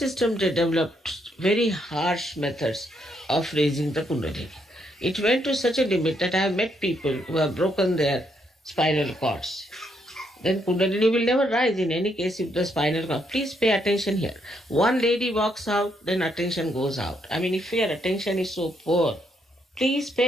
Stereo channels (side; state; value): both; normal; correlation 0.75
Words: they developed very harsh methods of raising the Kundalini. It went to such a limit that I have met people who have broken their spinal cords. Then Kundalini will never rise in any case if the spinal cord. Please pay attention here. One lady walks out, then attention goes out. If your attention is so poor, please